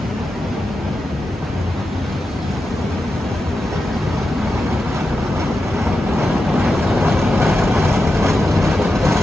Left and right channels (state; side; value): normal; both; correlation 0.89